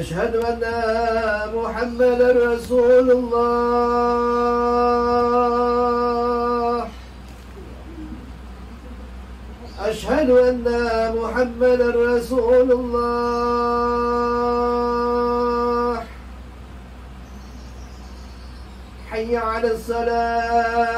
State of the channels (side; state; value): both; identical; correlation 1.00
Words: anna Muhammadar Rasulullah. Asyhadu anna Muhammadar Rasulullah. Hayya 'alas